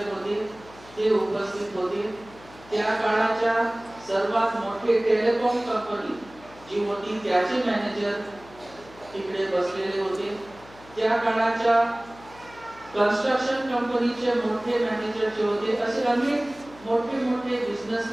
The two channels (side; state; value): left; noise; hum, 22 dB below the sound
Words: होते ते उपस्थित होते. त्या काळाच्या सर्वात मोठे टेलिकॉम कंपनी जी होती त्याचे मॅनेजर तिकडे बसलेले होते. त्या काळाच्या कन्स्ट्रक्शन कंपनीचे मोठे मॅनेजर जे होते, असे अनेक मोठे